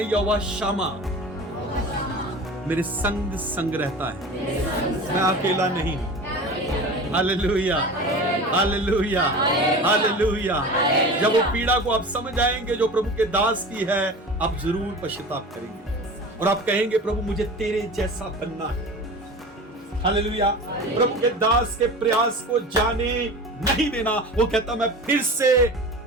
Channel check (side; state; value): both; normal; correlation 0.34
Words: यहोवा शामा मेरे संग संग रहता है, मैं अकेला नहीं हूं। Hallelujah, hallelujah, hallelujah. जब वो पीड़ा को आप समझ आएंगे जो प्रभु के दास की है, आप जरूर पश्चाताप करेंगे और आप कहेंगे प्रभु मुझे तेरे जैसा बनना है। हालेलुया। प्रभु के दास के प्रयास को जाने नहीं देना। वो कहता मैं फिर से